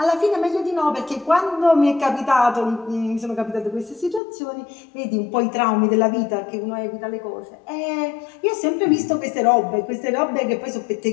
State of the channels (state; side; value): drops out; right; at 4.2 s